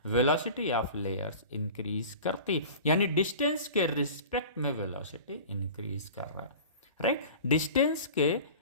वेलोसिटी ऑफ लेयर्स इंक्रीज करती, यानी डिस्टेंस के रिस्पेक्ट में वेलोसिटी इंक्रीज कर रहा है। राइट, डिस्टेंस के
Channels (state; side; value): inverted; both; correlation -0.39